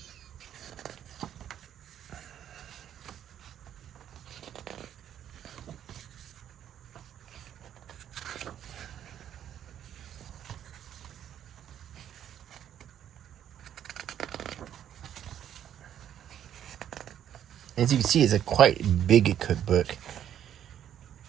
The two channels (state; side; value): quieter; left; 10.2 dB